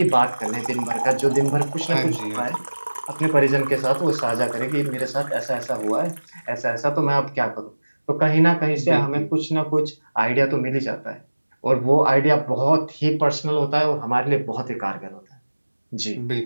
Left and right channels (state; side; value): inverted; both; correlation -1.00